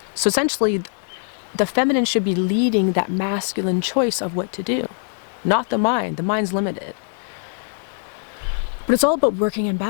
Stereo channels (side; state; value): right; silent; digital silence